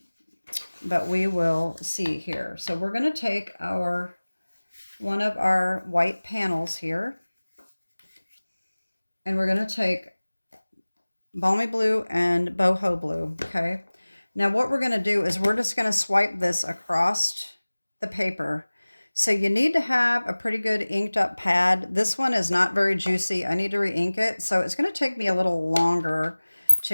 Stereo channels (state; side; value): inverted; both; correlation -1.00